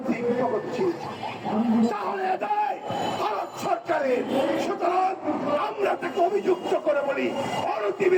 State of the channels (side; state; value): both; identical; correlation 1.00